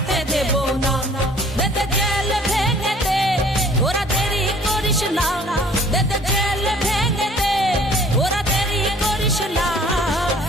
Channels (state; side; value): normal; both; correlation 0.54